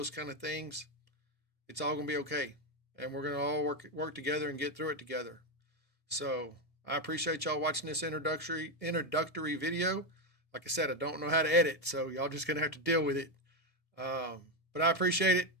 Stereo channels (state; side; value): late; right; 1.7 ms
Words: kind of things. it's all going to be okay. And we're going to all work together and get through it together. So I appreciate y'all watching this introductory video. Like I said, I don't know how to edit, so y'all just going to have to deal with it. But I appreciate it,